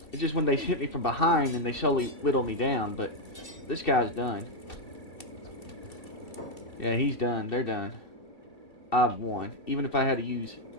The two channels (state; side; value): late; right; 2.7 ms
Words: It's just when they hit me from behind and they slowly whittle me down, but... This guy's done. Yeah, he's done. They're done. I've won. Even if I had to use